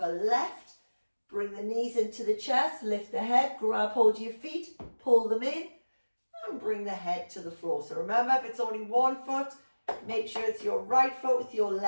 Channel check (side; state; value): both; inverted; correlation -1.00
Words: left. Bring the knees into the chest, lift the head, grab hold of your feet, pull them in, and bring the head to the floor. So remember, if it's only one foot, make sure it's your right foot with your